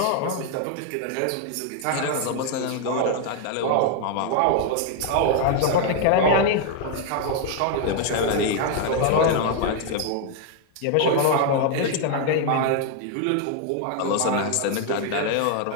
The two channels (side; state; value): both; different; correlation 0.00